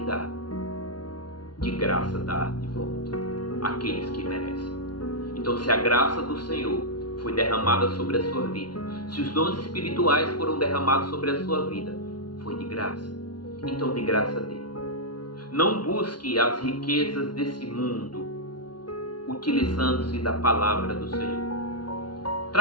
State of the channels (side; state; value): right; late; 0.70 ms